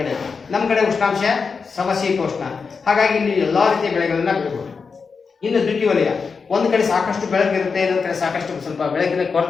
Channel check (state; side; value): quieter; right; 5.2 dB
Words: ಕಡೆ, ನಮ್ಮ ಕಡೆ ಉಷ್ಣಾಂಶ ಸಮಶೀತೋಷ್ಣ. ಹಾಗಾಗಿ ಇಲ್ಲಿ ಎಲ್ಲಾ ರೀತಿಯ ಬೆಳೆಗಳನ್ನ ಬೆಳಿಬಹುದು. ಇನ್ನು ದ್ವಿತೀಯವಲಯ, ಒಂದು ಕಡೆ ಸಾಕಷ್ಟು ಬೆಳಕು ಇರುತ್ತೆ, ಇನ್ನೊಂದು ಕಡೆ ಸಾಕಷ್ಟು ಸ್ವಲ್ಪ ಬೆಳಕಿನ